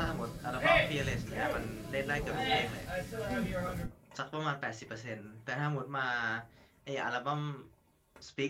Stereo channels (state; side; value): identical; both; correlation 1.00